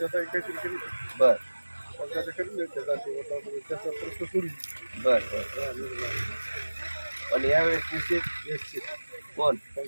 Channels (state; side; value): inverted; both; correlation -1.00